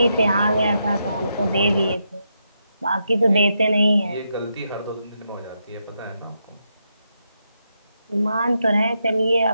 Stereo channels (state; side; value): inverted; both; correlation -0.82